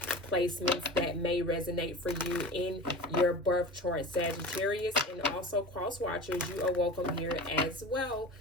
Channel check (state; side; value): normal; both; correlation 0.34